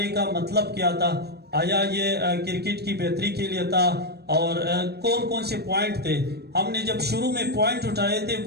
کا مطلب کیا تھا، آیا یہ کرکٹ کی بہتری کے لیے تھا، اور کون کون سے پوائنٹ تھے۔ ہم نے جب شروع میں پوائنٹ اٹھائے تھے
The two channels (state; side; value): late; left; 0.47 ms